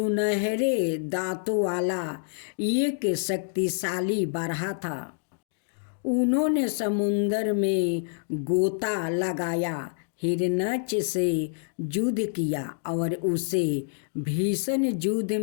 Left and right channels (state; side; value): silent; right; digital silence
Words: दांतों वाला एक शक्तिशाली बारहा था। उन्होंने समुद्र में गोता लगाया, हिरण्यक्ष से युद्ध किया और उसे भीषण युद्ध